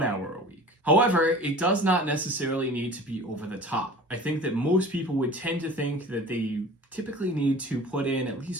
hour a week. However, it does not necessarily need to be over the top. I think that most people would tend to think that they typically need to put in at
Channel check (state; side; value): normal; both; correlation 0.42